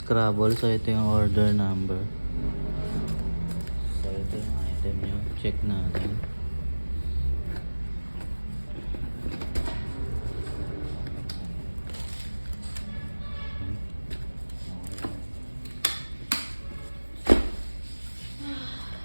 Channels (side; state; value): both; inverted; correlation -1.00